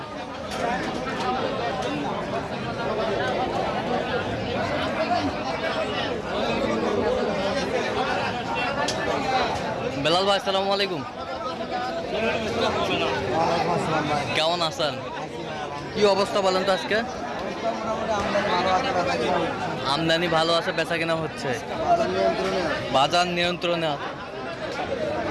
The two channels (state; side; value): identical; both; correlation 1.00